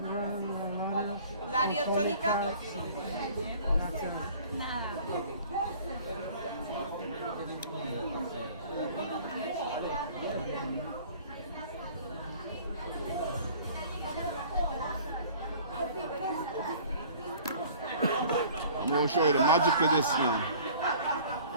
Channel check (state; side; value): inverted; both; correlation -0.49